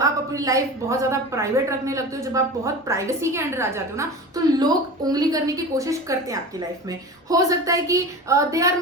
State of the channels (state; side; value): normal; both; correlation 0.32